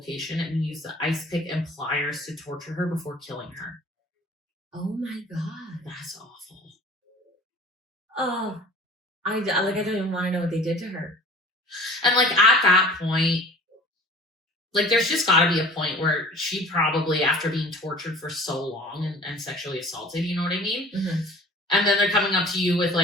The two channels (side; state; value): both; normal; correlation 0.45